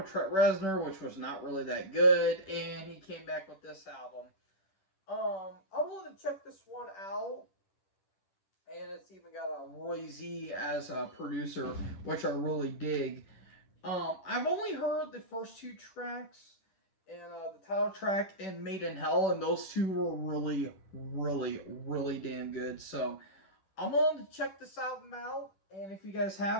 Trent Reznor, which was not really that good, and he came back with this album. I'm willing to check this one out, and it's even got a Roy Z as a producer, which I really dig. I've only heard the first 2 tracks, and the title track and Made in Hell, and those two were really, really, really damn good. So I'm willing to check this album out, and if you guys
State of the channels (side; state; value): right; late; 10 ms